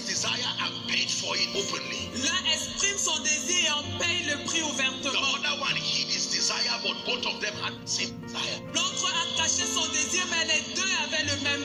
desire and paid for it openly. L'un exprime son désir et en paye le prix The ouvertement. other one hid his desire, but both of them had the same desire. L'autre a caché son désir, mais les deux avaient le même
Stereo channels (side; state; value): both; identical; correlation 1.00